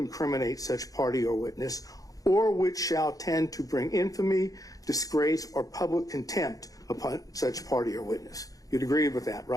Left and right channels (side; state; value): right; late; 0.17 ms